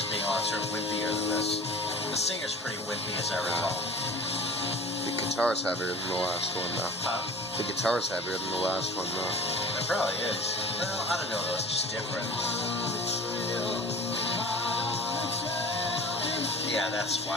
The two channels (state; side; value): normal; both; correlation 0.40